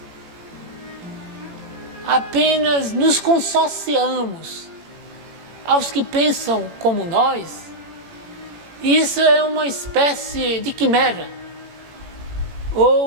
apenas nos consorciamos aos que pensam como nós, isso é uma espécie de quimera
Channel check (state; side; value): late; left; 18 ms